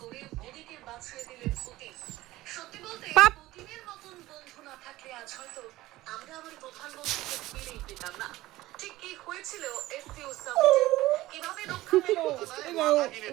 মোদীকে বাঁচিয়ে দিলেন পুতিন সত্যি বলতে পুতিনের মতন বন্ধু না থাকলে আজ হয়তো আমরা আমার প্রধানমন্ত্রীকে ফিরেই পেতাম না ঠিক কি হয়েছিল এসসিও সামিটে কিভাবে রক্ষা পেল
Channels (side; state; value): left; quieter; 17.3 dB